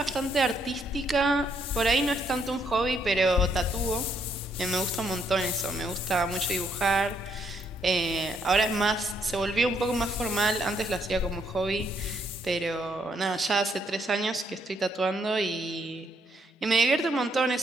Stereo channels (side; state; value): both; normal; correlation 0.72